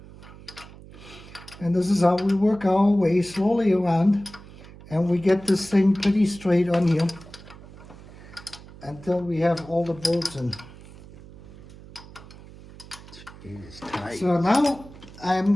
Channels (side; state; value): right; noise; hum, 19 dB below the sound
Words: And this is how we work our way slowly around. And we get this thing pretty straight on here until we have all the bolts in. It's tight. So now I'm